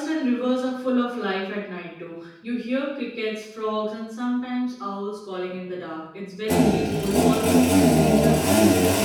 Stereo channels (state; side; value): identical; both; correlation 1.00